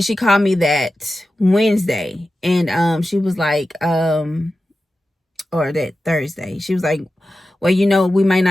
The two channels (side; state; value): both; normal; correlation 0.93